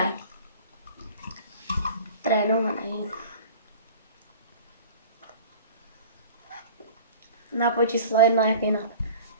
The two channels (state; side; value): inverted; both; correlation -0.42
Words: Trénovaný. Nápoj číslo 1, jak jinak.